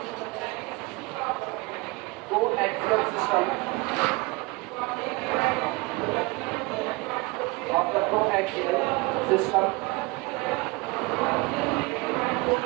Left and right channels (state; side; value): quieter; left; 25.6 dB